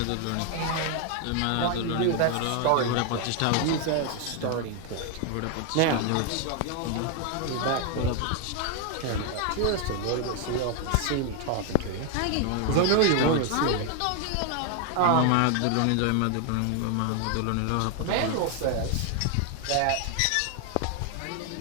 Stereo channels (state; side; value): different; both; correlation 0.01